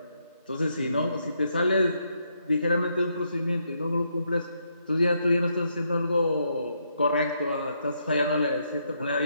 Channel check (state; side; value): inverted; both; correlation -0.77